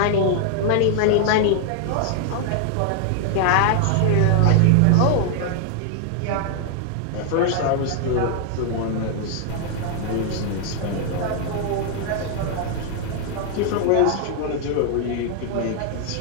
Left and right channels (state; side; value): different; both; correlation 0.00